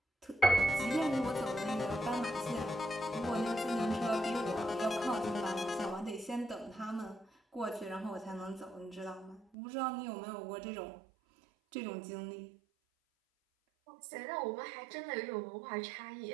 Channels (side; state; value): left; drops out; at 9.5 s